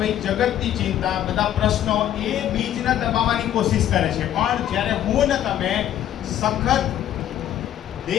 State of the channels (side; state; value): right; quieter; 11.3 dB